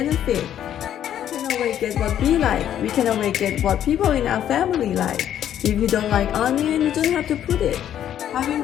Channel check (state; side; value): quieter; right; 10.6 dB